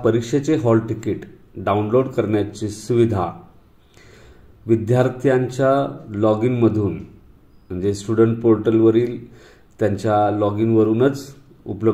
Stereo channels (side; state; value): both; identical; correlation 1.00